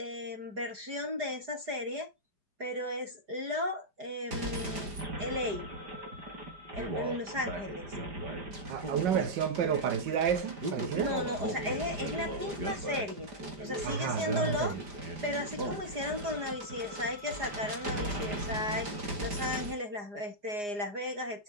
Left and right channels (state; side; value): late; left; 4.8 ms